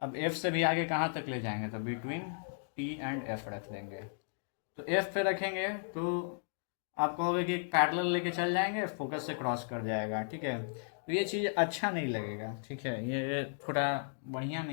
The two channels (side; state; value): right; silent; digital silence